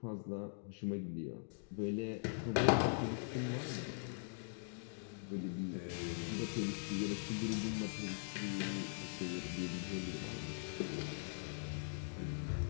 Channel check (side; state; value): right; silent; digital silence